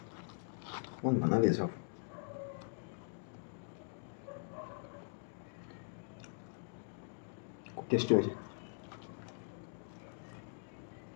কেমন বানাবে সব? খুব টেস্টি হয়েছে।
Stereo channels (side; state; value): right; silent; digital silence